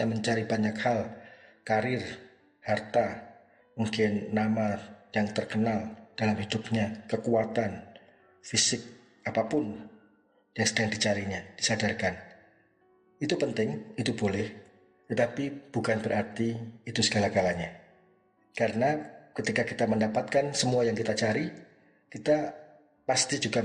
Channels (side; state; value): both; identical; correlation 1.00